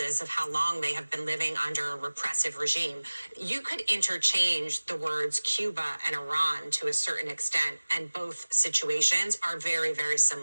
of how long they have been living under a repressive regime, you could interchange the words Cuba and Iran to a certain extent, and both situations are very, very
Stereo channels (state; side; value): inverted; both; correlation -1.00